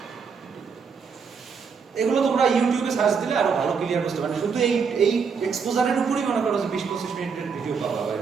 এগুলো তোমরা ইউটিউবে সার্চ দিলে আরো ভালো ক্লিয়ার বুঝতে পারবে। শুধু এই এক্সপোজারের উপরই মনে করো যে 20-25 মিনিটের ভিডিও পাবা বা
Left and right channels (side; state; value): left; quieter; 5.8 dB